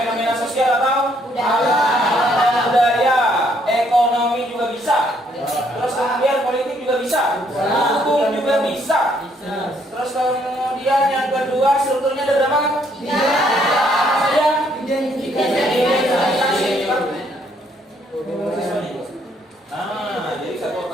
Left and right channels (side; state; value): both; normal; correlation 0.69